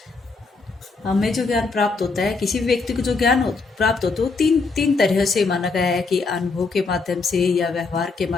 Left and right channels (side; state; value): right; quieter; 4.2 dB